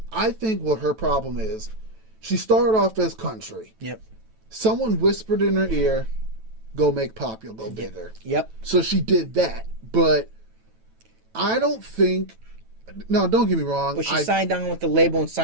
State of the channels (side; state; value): left; late; 9.1 ms